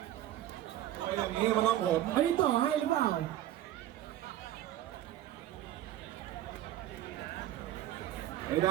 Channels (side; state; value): left; quieter; 13.1 dB